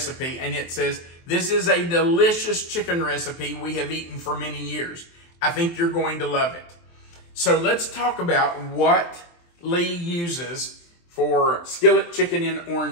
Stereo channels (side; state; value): right; late; 23 ms